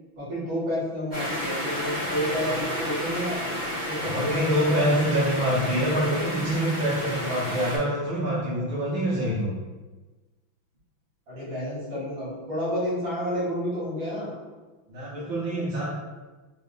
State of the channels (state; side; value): late; left; 6.0 ms